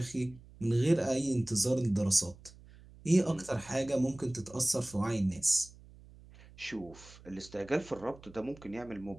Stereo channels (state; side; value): noise; right; hum, 21 dB below the sound